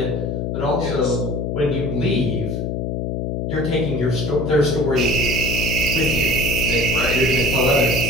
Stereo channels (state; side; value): noise; left; hum, 2 dB below the sound